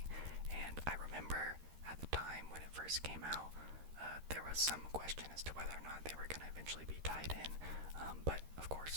and I remember at the time when it first came out, there was some question as to whether or not they were going to eventually be tied in, but of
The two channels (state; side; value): late; left; 13 ms